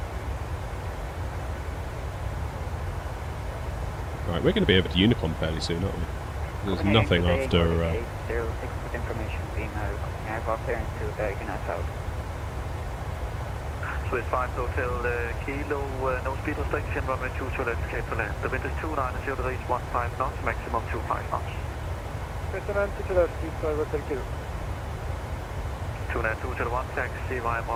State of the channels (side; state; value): both; identical; correlation 1.00